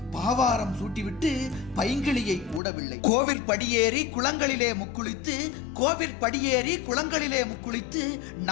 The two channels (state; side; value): drops out; right; at 2.6 s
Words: பாவாரம் சூட்டிவிட்டு பைங்கிளியை கூடவில்லை. கோவில் படியேறி குளங்களிலே முக்குளித்து, கோவில் படியேறி குளங்களிலே முக்குளித்து,